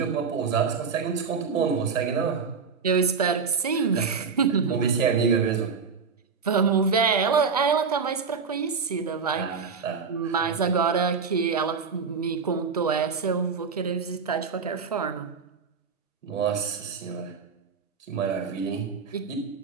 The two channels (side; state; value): left; quieter; 5.6 dB